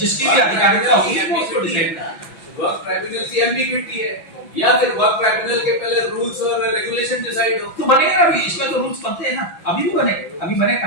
भी अधिकारिता होगी वो उसको डिसाइड करेगा। वर्क ट्राइब्यूनल की एम्बिग्विटी है, या फिर वर्क ट्राइब्यूनल के पहले रूल्स और रेगुलेशन डिसाइड हो तो बनेगा ना, अभी इसमें तो रूल्स बनते हैं ना, अभी भी बनेंगे, अभी बने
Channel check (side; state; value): right; late; 6.0 ms